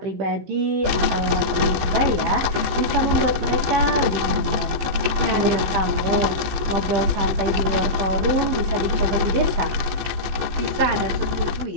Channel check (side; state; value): left; late; 15 ms